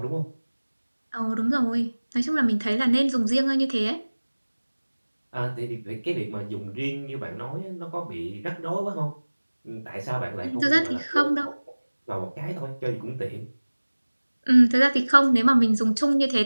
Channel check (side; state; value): both; inverted; correlation -1.00